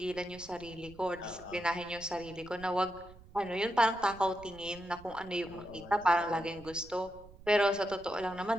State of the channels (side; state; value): right; noise; rumble, 21 dB below the sound